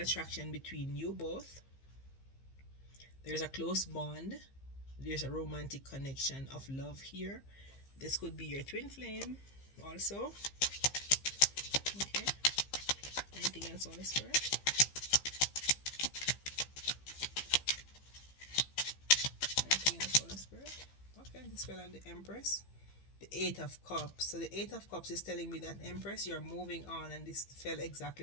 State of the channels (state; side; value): late; right; 15 ms